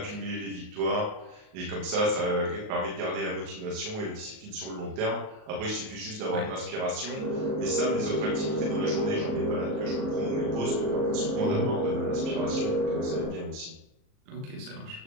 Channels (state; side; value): late; left; 38 ms